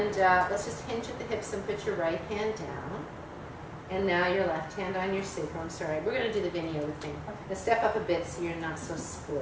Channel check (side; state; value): both; identical; correlation 1.00